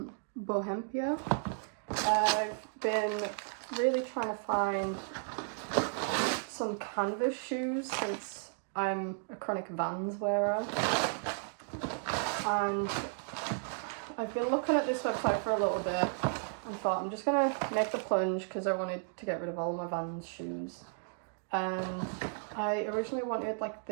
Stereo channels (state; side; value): silent; left; digital silence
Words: Bohempia. I've been really trying to find some canvas shoes since I'm a chronic Vans wearer. And I've been looking at this website for a little bit and thought I'm just gonna make the plunge because I wanted to get rid of all my Vans shoes. And I originally wanted like